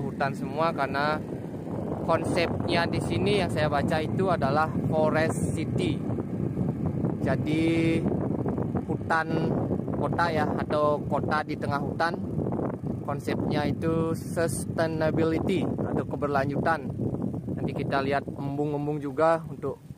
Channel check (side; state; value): both; identical; correlation 1.00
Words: semua, karena konsepnya di sini yang saya baca itu adalah forest city. Jadi hutan kota ya, atau kota di tengah hutan. Konsepnya itu sustainability atau keberlanjutan. Nanti kita lihat embung-embung juga untuk